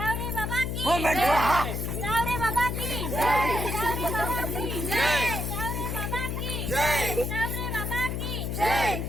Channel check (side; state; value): left; noise; hum, 2 dB below the sound